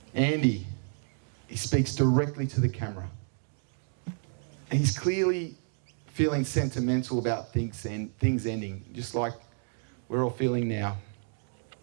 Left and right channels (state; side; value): silent; left; digital silence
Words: Andy, he speaks directly to the camera. And he's clearly feeling sentimental about things ending, just like we're all feeling now.